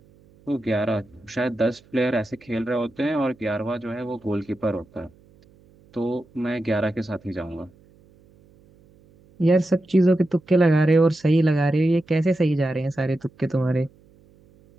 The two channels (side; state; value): right; noise; hum, 29 dB below the sound